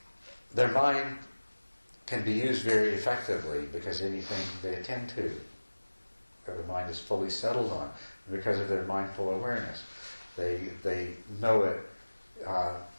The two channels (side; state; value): both; inverted; correlation -1.00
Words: their mind can be used very effectively, because anything they attend to, the mind is fully settled on, because of their mindful awareness. They know it